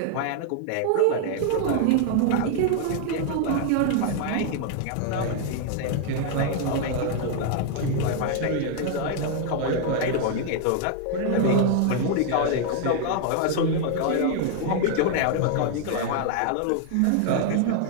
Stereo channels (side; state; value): both; different; correlation 0.00